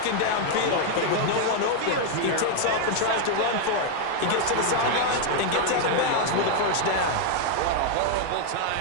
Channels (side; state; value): both; different; correlation 0.00